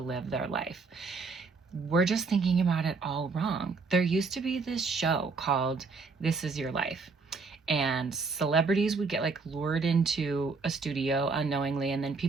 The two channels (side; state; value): left; quieter; 4.4 dB